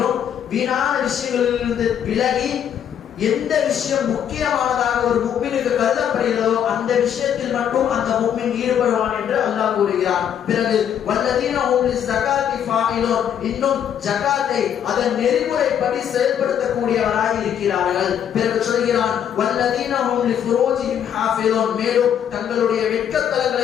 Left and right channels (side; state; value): right; quieter; 9.2 dB